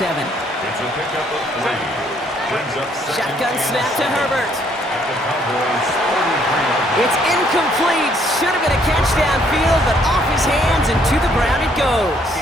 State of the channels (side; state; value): both; normal; correlation 0.66